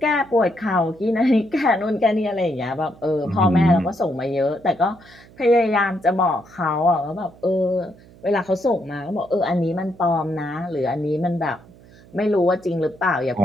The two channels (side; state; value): right; noise; hum, 24 dB below the sound